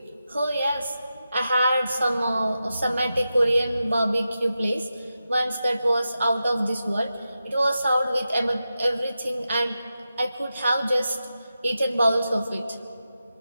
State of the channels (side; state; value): both; inverted; correlation -0.91